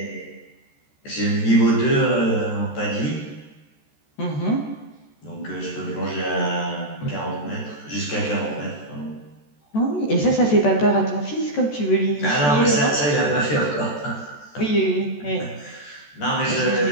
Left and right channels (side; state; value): right; late; 14 ms